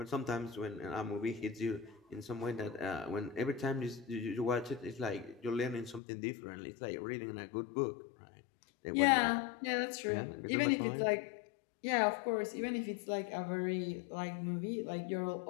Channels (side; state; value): right; drops out; at 6.0 s